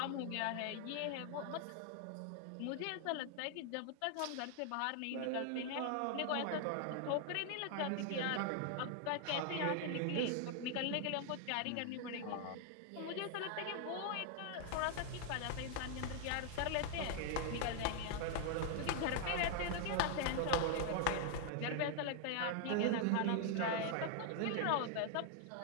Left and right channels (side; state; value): both; different; correlation 0.00